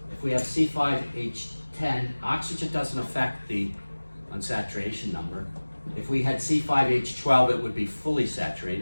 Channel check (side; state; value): both; inverted; correlation -1.00